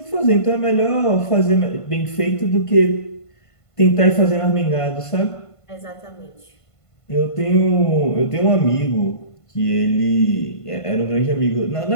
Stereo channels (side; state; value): right; late; 1.5 ms